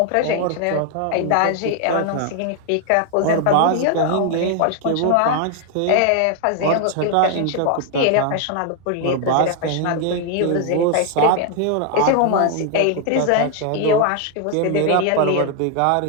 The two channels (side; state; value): both; different; correlation 0.00